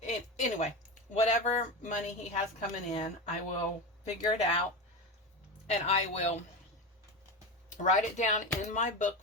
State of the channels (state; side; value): normal; both; correlation 0.21